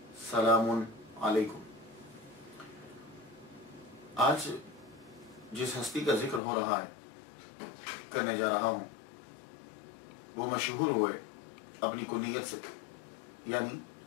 سلام علیکم۔ آج جس ہستی کا ذکر ہو رہا ہے، کرنے جا رہا ہوں، وہ مشہور ہوئے اپنی کنیت سے، یعنی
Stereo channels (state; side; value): drops out; right; at 6.4 s